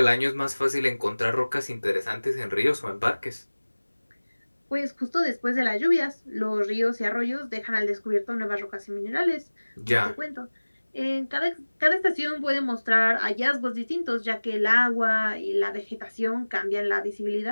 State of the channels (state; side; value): inverted; both; correlation -1.00